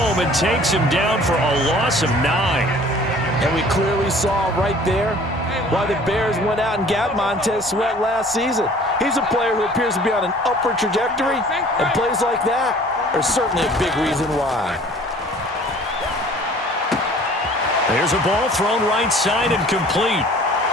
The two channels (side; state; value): both; normal; correlation 0.50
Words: and takes him down for a loss of 9. And we clearly saw right there why the Bears went out and got Montez Sweat last season. He's a player who appears to be on an upward trajectory, and plays like that are certainly a big reason why. There's a ball thrown right side and complete.